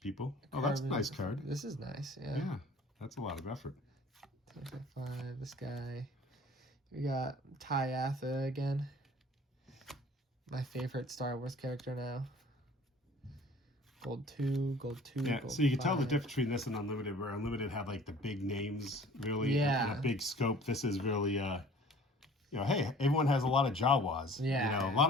people. Oh, that's a nice card. This is nice, yeah. Yeah, that's a lot of effort. 5, this guy. We got Ty Atha again. My favorite Star Wars character now. Gold 2. Yeah, gold so you can 5. tell the difference between this and Unlimited, where Unlimited had like the big names, really, yeah, and a big scope. This is really hey, everyone has a lot of Jawas. Yeah. A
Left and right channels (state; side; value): normal; both; correlation 0.49